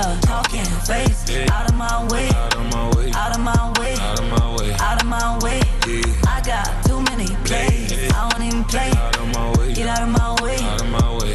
talking face out of my way, out of my way, out of my way, out of my way, out of my way. I got too many plays, I don't even play. Out of my way, get out of my way, out of my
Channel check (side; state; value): both; identical; correlation 1.00